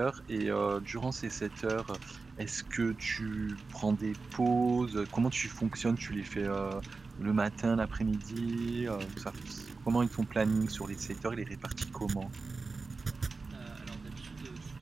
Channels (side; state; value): left; quieter; 4.1 dB